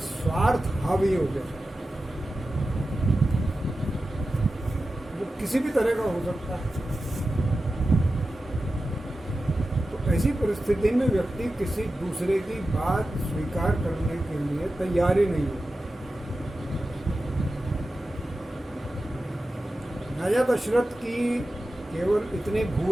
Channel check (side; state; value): both; normal; correlation 0.93